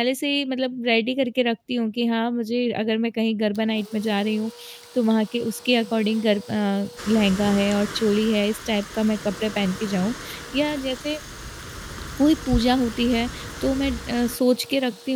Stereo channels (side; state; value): both; identical; correlation 1.00